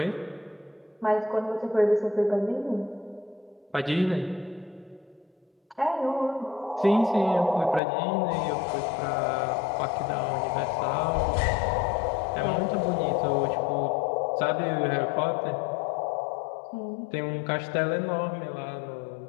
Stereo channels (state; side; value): drops out; right; at 7.8 s